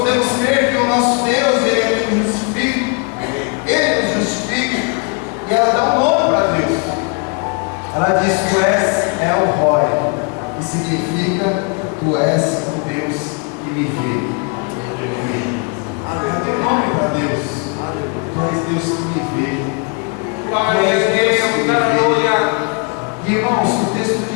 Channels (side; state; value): right; quieter; 35.1 dB